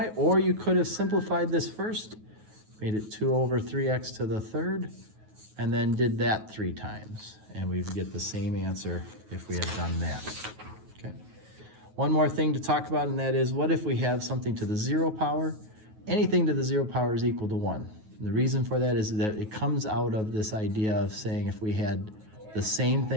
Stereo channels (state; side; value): late; left; 9.3 ms